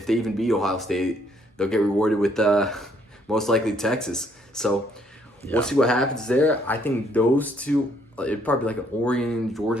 they even beat Ohio State, they'll get rewarded with most likely Texas. So we'll see what happens there. I think those two, it'd probably be like an Oregon, Georgia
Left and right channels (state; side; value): normal; both; correlation 0.67